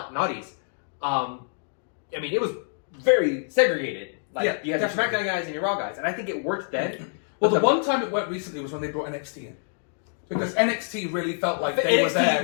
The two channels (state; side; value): silent; right; 61 dB below the other